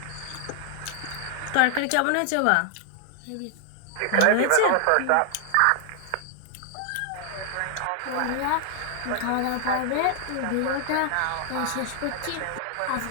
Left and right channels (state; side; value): different; both; correlation 0.00